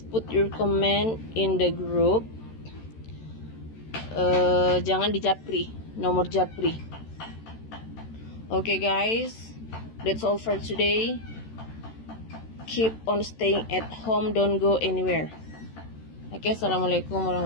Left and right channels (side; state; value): right; late; 13 ms